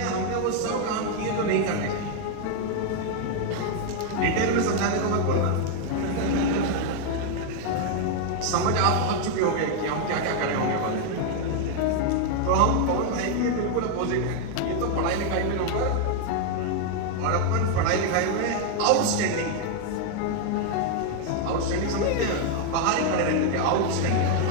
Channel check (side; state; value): both; different; correlation 0.00